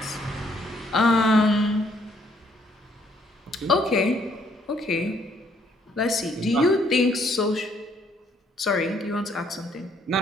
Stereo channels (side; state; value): both; normal; correlation 0.67